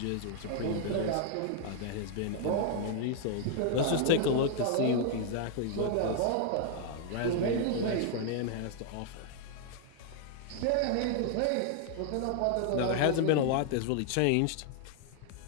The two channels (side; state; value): both; different; correlation 0.00